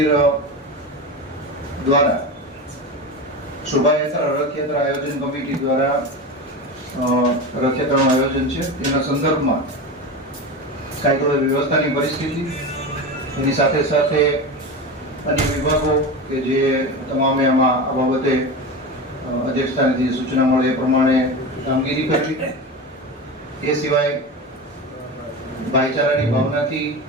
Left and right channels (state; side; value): normal; both; correlation 0.24